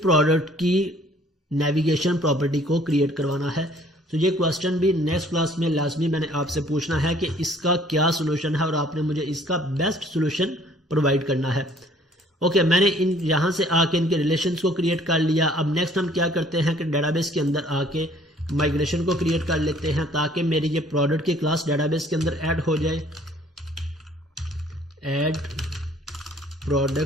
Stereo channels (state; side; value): normal; both; correlation 0.58